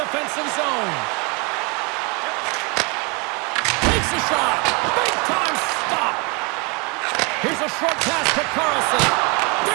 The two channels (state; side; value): quieter; left; 30.7 dB